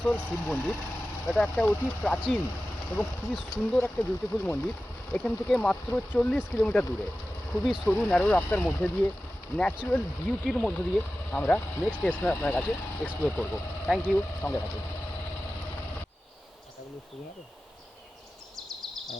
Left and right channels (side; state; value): both; normal; correlation 0.95